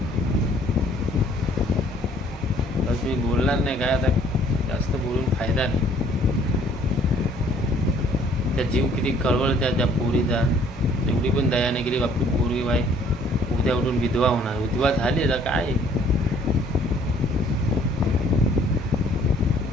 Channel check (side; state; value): both; normal; correlation 0.59